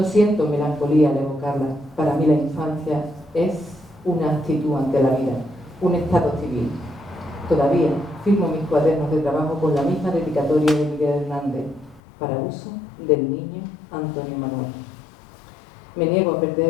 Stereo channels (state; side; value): drops out; right; at 12.0 s